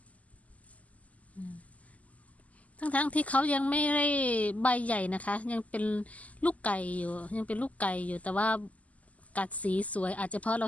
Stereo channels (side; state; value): right; late; 0.072 ms